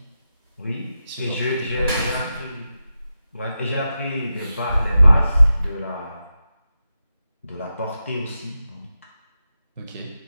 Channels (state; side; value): inverted; both; correlation -0.90